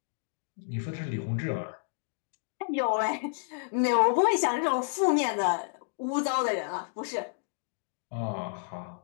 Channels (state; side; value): silent; right; digital silence